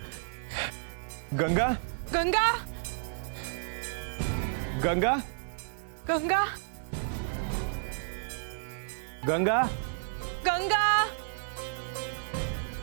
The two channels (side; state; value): left; silent; 57 dB below the other